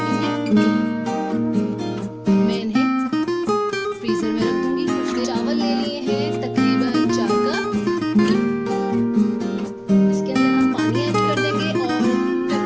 ली हैं। मैं इन्हें फ्रीजर में रख दूंगी। कुछ चावल ले लिए हैं तकरीबन 4 कप। इसके अंदर हम पानी ऐड कर देंगे और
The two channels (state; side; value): identical; both; correlation 1.00